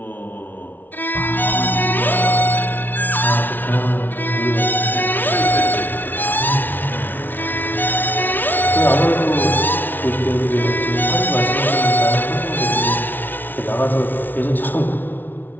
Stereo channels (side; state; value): right; late; 0.089 ms